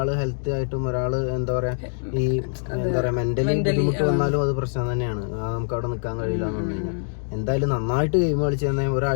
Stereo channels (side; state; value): right; silent; digital silence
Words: ഹെൽത്ത് ആയിട്ടും ഒരാള് എന്താ പറയാ ഈ മെന്റലി ബുദ്ധിമുട്ട് വന്നാലും അത് പ്രശ്നം തന്നെയാണ്. നമുക്ക് അവിടെ നിൽക്കാൻ കഴിയില്ല എന്ന് പറഞ്ഞു കഴിഞ്ഞാൽ. എന്തായാലും നന്നായിട്ട് ഗെയിം കളിച്ചു തന്നെ